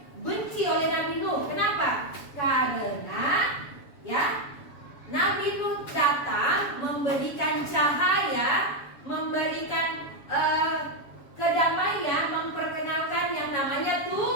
benci oleh Nabi Nuh. Kenapa? Karena ya, Nabi Nuh datang memberikan cahaya, memberikan kedamaian, memperkenalkan yang namanya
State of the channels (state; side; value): late; right; 7.1 ms